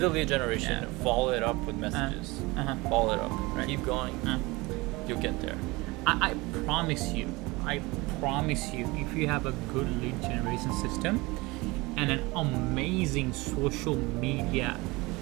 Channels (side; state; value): left; quieter; 23.1 dB